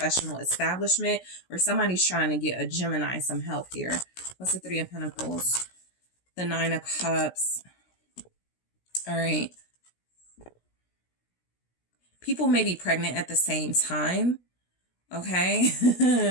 establishment, or somebody's trying to get a Gemini some help here. What's the Three of Pentacles? The Nine of Cups. All right. People may be pregnant at the same time. Okay,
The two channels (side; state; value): right; late; 16 ms